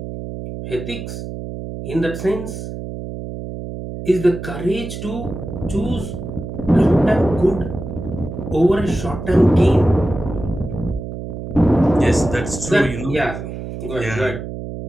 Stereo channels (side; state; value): right; noise; hum, 8 dB below the sound